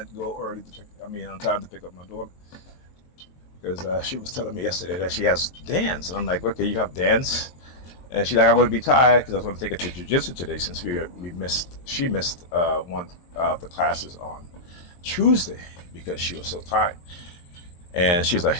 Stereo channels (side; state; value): right; late; 23 ms